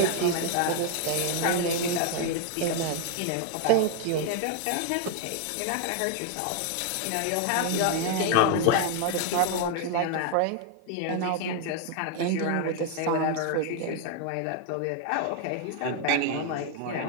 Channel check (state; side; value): different; both; correlation 0.00